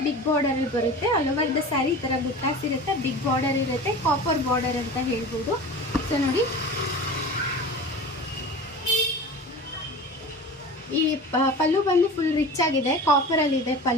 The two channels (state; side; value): normal; both; correlation 0.35